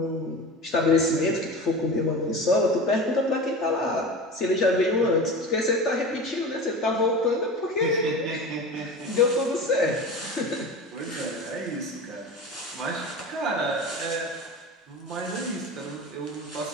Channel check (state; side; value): normal; both; correlation 0.31